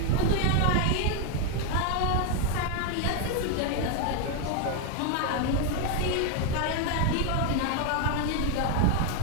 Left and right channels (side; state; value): both; different; correlation 0.01